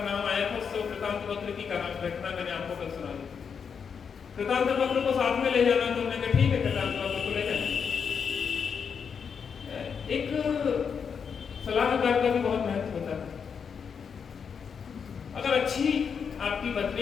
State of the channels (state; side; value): quieter; right; 6.6 dB